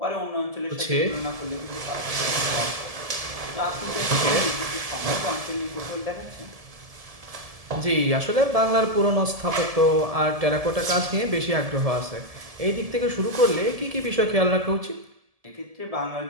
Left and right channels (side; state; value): left; late; 1.7 ms